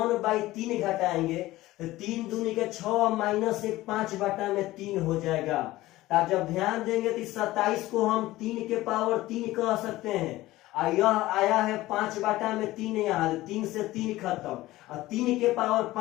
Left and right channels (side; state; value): right; quieter; 17.3 dB